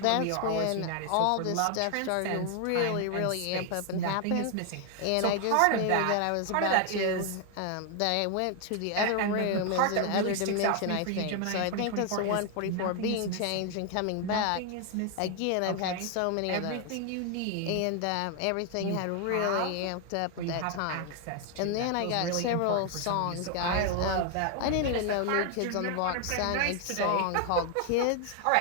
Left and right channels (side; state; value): both; different; correlation 0.00